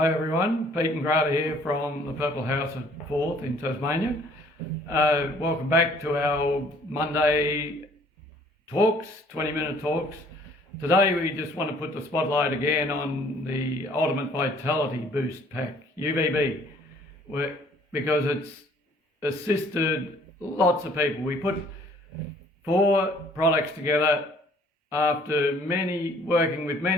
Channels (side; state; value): both; normal; correlation 0.58